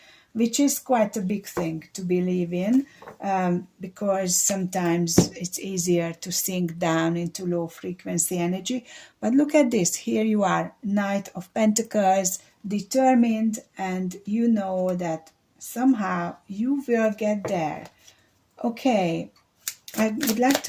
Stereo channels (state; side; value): identical; both; correlation 1.00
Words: which is quite a big thing to believe in, because sometimes it's easier to sink down into low frequency energy. But look at this. Here you are, Knight of Pentacles, determined, and you know that somehow you will get there. Okay, I would like